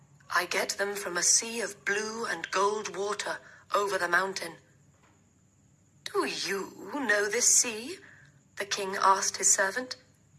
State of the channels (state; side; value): identical; both; correlation 1.00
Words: "I get them from a sea of blue and gold water over the mountain." "Do you know this sea?" the king asked his servant.